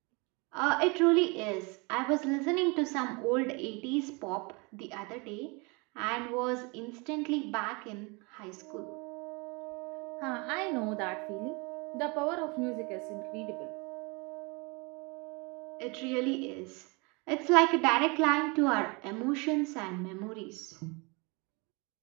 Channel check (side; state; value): left; quieter; 29.1 dB